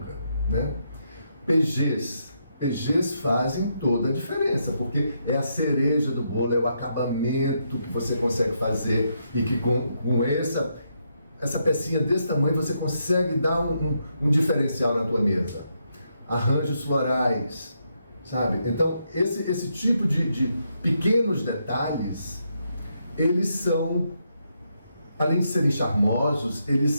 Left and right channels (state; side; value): inverted; both; correlation -0.79